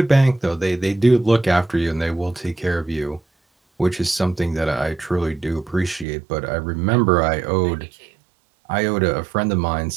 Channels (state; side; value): drops out; left; at 6.1 s